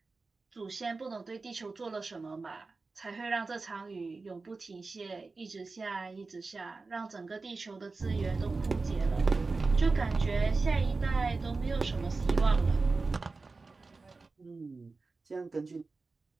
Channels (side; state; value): left; quieter; 3.9 dB